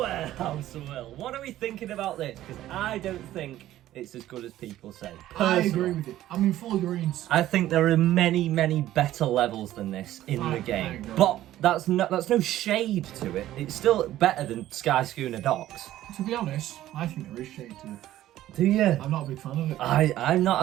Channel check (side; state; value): left; quieter; 13.8 dB